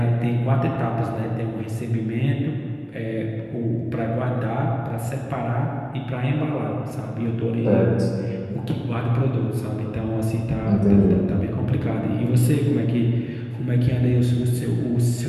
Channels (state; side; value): identical; both; correlation 1.00